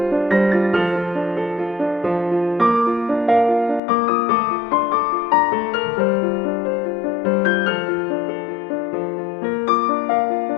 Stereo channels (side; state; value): right; drops out; at 3.8 s